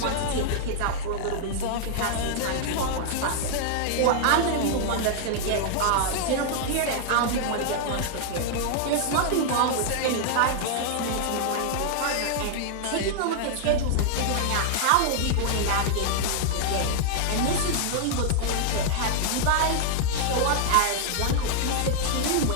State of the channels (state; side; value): different; both; correlation -0.01